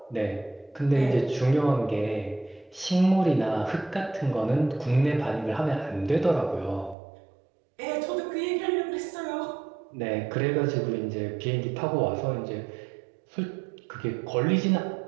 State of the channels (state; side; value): drops out; left; at 7.0 s